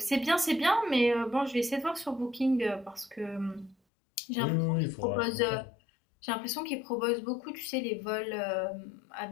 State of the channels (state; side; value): drops out; right; at 3.8 s